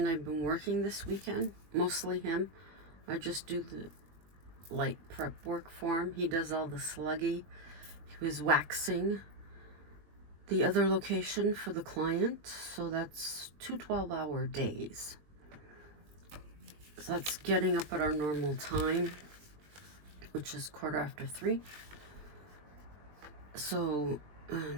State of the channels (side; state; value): left; late; 20 ms